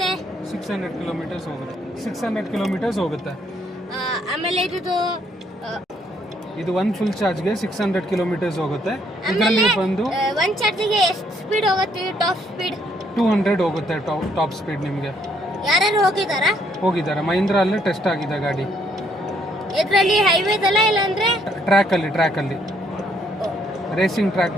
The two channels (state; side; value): normal; both; correlation 0.69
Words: 600 ಕಿಲೋಮೀಟರ್ಸ್ ಹೋಗುತ್ತೆ. 600 ಕಿಲೋಮೀಟರ್ಸ್ ಹೋಗುತ್ತೆ. ಆಮೇಲೆ ಇದು ಒಂದು ಫುಲ್ ಚಾರ್ಜ್ಗೆ 600 ಕಿಲೋಮೀಟರ್ಸ್ ಹೋಗುತ್ತೆ. ಇದರಲ್ಲಿ ಬಂದು ಒಂದು ಚಾರ್ಜಿಗೆ ಎಷ್ಟು ಸ್ಪೀಡ್ ಹೋಗುತ್ತೆ? ಟಾಪ್ ಸ್ಪೀಡ್ 200 ಹೋಗುತ್ತೆ. ಟಾಪ್ ಸ್ಪೀಡ್ ನಿಮಗೆ ಯಾರು ಹೋಗಿದ್ದಾರೆ. ಮಹೀಂದ್ರ ಅಲ್ಲೇ ಟೆಸ್ಟ್ ಆಗಿದೆ ಗಾಡಿ. ಇದರಲ್ಲಿ ಹೈವೇದಲ್ಲ ಇಲ್ಲಾಂದ್ರೆ ಟ್ರ್ಯಾಕಲ್ಲಿ ರೇಸಿಂಗ್ ಟ್ರ್ಯಾಕ್